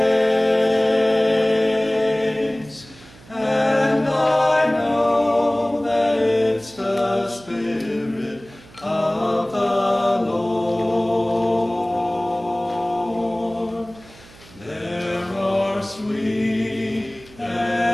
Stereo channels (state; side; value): noise; right; hum, 23 dB below the sound